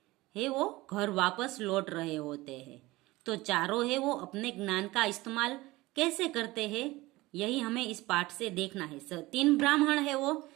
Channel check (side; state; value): left; quieter; 19.8 dB